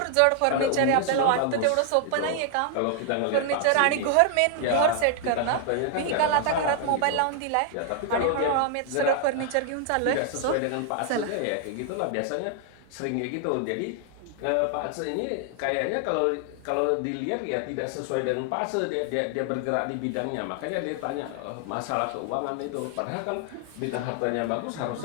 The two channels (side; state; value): both; different; correlation 0.00